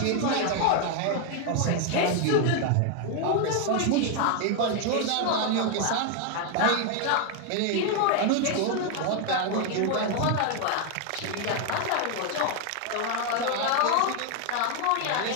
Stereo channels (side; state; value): both; different; correlation 0.01